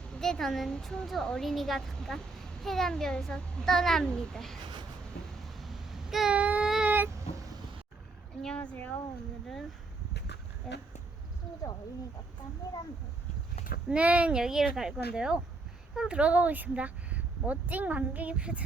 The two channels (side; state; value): left; quieter; 3.5 dB